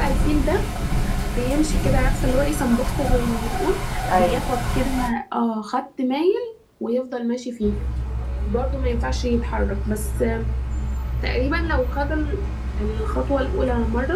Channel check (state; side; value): identical; both; correlation 1.00